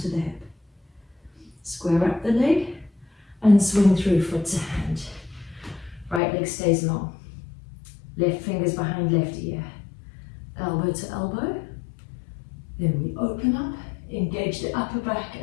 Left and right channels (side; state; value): right; drops out; at 6.2 s